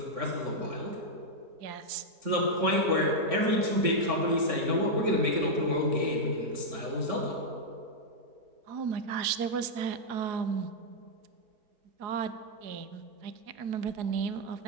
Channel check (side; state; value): left; late; 4.8 ms